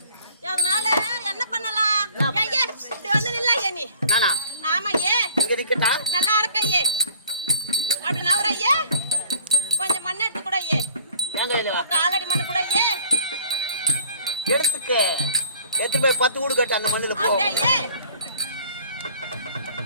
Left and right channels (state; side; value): inverted; both; correlation -0.55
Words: அதனால என்ன பண்ணலாம்? ஐயே இப்படி வந்து நில்லையே நீ. நானா? ஆமா ஏ. இங்க நிக்கட்டா? நல்லா இருக்கையே. அப்படி நவரையே. கொஞ்சம் மண் எடுத்து கூட ஏ. எங்க இல்ல? காலடி மண் கூட ஏ. எடுத்துக்க. எடுத்து போய் 10 ஊடு கட்டு அந்த மண்ணுல போ. அப்படியே ஏ.